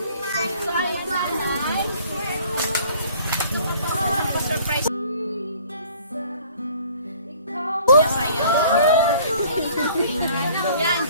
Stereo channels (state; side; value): inverted; both; correlation -0.53